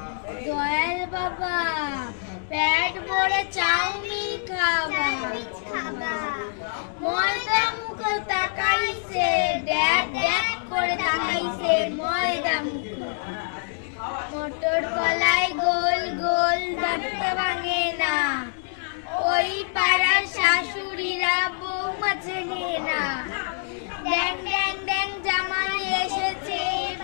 দয়াল বাবা পেট ভরে চাউমিন খাবা, ময়দা মুখ তাকাইছে, ড্যাক ড্যাক করে তাকাইছে ময়দা মুখ। মটর কলাই গোল গোল দাঁতটা ভাঙে না, ওই পাড়ার শাশুড়িরা বৌমা চেনে না। ড্যাং ড্যাং ড্যাং জামাই এসেছে,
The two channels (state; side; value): silent; right; digital silence